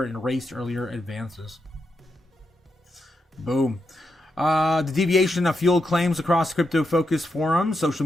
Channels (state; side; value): normal; both; correlation 0.84